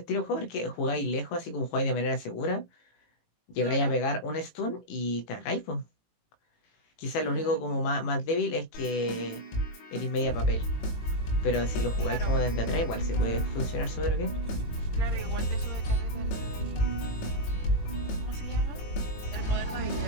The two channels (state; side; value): late; right; 18 ms